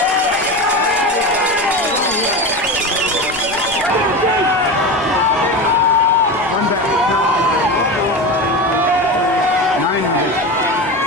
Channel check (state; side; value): normal; both; correlation 0.24